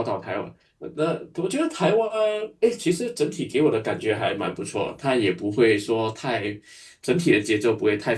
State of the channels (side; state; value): both; identical; correlation 1.00